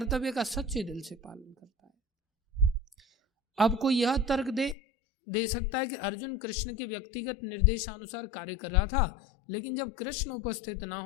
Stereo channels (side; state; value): right; drops out; at 4.8 s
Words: का सच्चे दिल से पालन करता है। अब कोई यह तर्क दे सकता है कि अर्जुन कृष्ण के व्यक्तिगत निर्देशानुसार कार्य कर रहा था, लेकिन जब कृष्ण उपस्थित ना